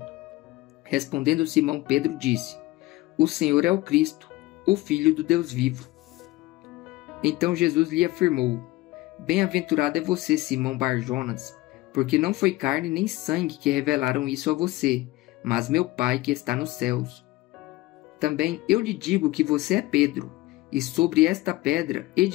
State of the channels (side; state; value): right; quieter; 18.6 dB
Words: Respondendo Simão Pedro disse: O Senhor é o Cristo, o Filho do Deus vivo. Então Jesus lhe afirmou: Bem-aventurado é você, Simão Bar-Jonas, porque não foi carne nem sangue que revelaram isso a você, mas meu Pai que está nos céus. Também eu lhe digo que você é Pedro, e sobre esta pedra